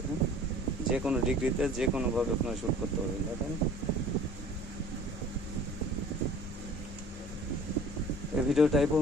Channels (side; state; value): both; normal; correlation 0.48